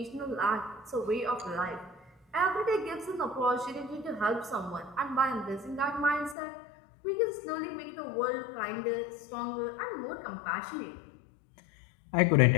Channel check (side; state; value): right; drops out; at 6.4 s